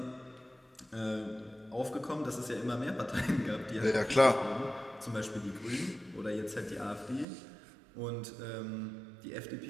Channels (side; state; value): left; drops out; at 7.2 s